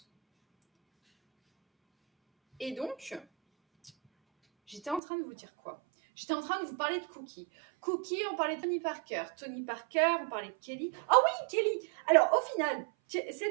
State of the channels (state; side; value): drops out; left; at 5.0 s